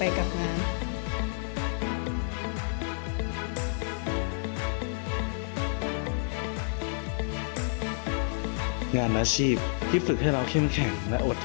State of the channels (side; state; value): right; silent; digital silence